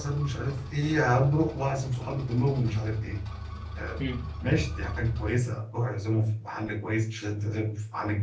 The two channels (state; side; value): identical; both; correlation 1.00